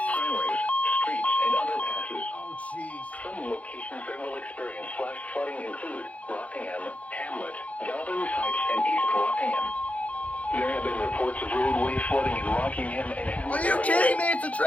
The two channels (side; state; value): right; late; 0.067 ms